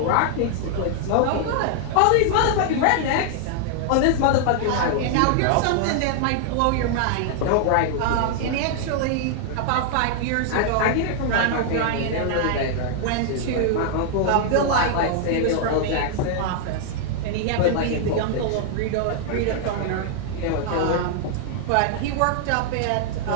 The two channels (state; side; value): different; both; correlation -0.01